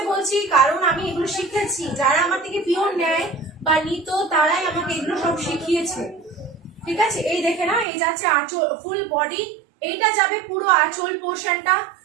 বলছি কারণ আমি এগুলো শিখেছি, যারা আমার থেকে পিওর নেয় বা নিত তারাই আমাকে এগুলো সব শিখিয়েছে। ঠিক আছে, এই দেখে না, এই যাচ্ছে আঁচল, ফুল বডি, এইটা যাবে পুরো আঁচল পোর্শনটা,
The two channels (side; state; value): left; drops out; at 7.9 s